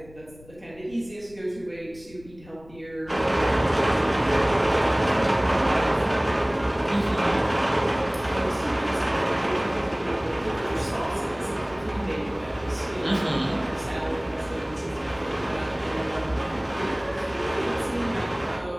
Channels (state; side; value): noise; left; rumble, 22 dB below the sound